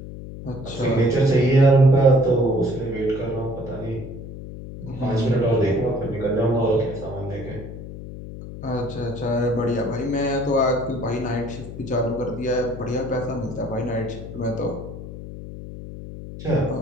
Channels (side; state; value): left; noise; hum, 11 dB below the sound